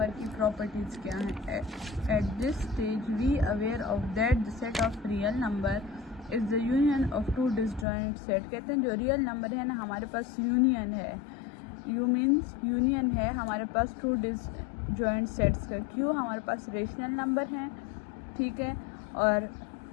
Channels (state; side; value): drops out; right; at 7.9 s